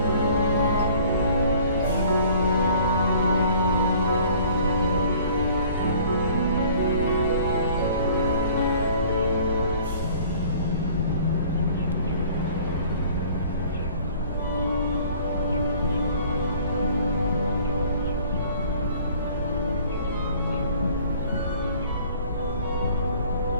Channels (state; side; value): inverted; both; correlation -0.52